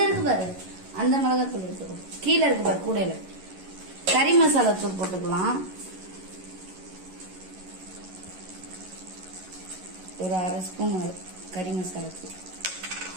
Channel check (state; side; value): late; left; 11 ms